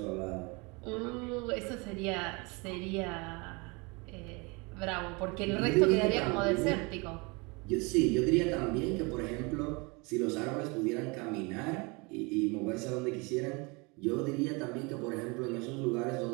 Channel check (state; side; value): quieter; left; 28.3 dB